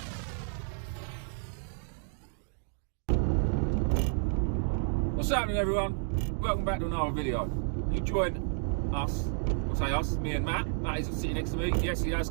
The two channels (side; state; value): left; silent; 57 dB below the other